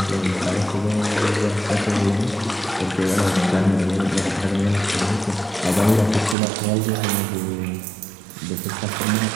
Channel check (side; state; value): left; drops out; at 6.4 s